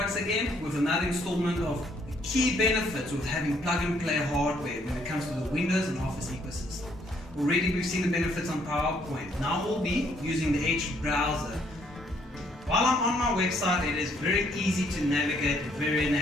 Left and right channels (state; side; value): normal; both; correlation 0.68